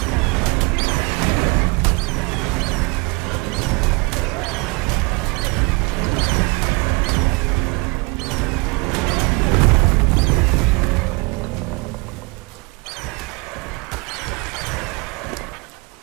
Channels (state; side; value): quieter; left; 29.3 dB